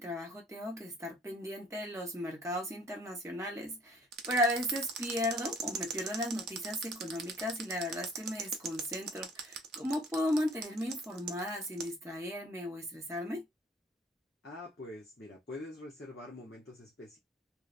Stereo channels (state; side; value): normal; both; correlation 0.56